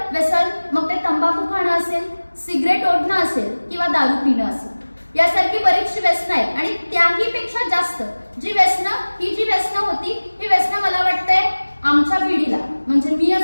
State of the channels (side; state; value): both; inverted; correlation -1.00